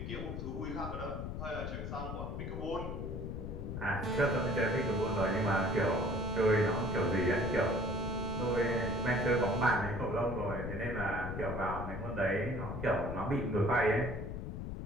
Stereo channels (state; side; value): noise; left; rumble, 5 dB below the sound